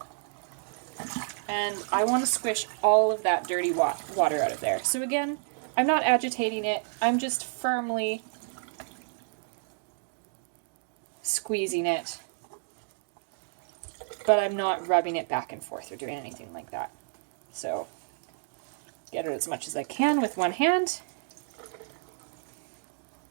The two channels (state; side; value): silent; left; digital silence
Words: And I want to squish all of that dirty water out of there. So again, I'm not agitating it, I'm just firmly squeezing it, but I'm not rubbing it back and forth or doing anything like that. So get it as much as I can with one hand.